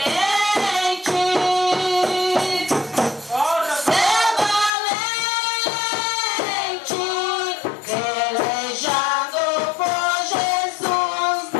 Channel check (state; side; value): drops out; right; at 4.7 s